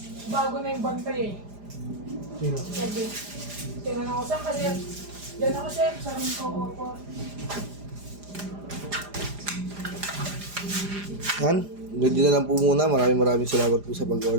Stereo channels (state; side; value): late; left; 4.9 ms